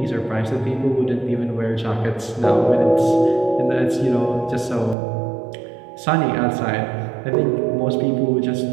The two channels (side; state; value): left; drops out; at 5.0 s